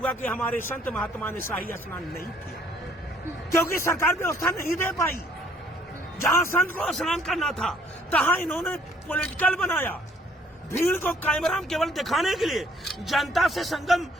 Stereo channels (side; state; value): both; normal; correlation 0.63